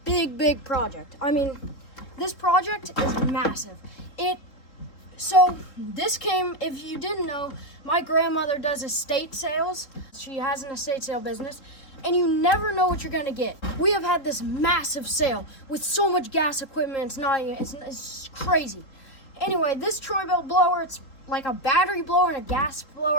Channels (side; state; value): right; late; 3.7 ms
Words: big project. I mean, this project is massive. So this came, if you didn't know, my grandmother does estate sales. She has an estate sale business, and you never know what you're gonna get. We have had this massive sale with so much gas equipment, it's crazy. Anyway, this Troy Bilt blower, it's like a battery blower and a gas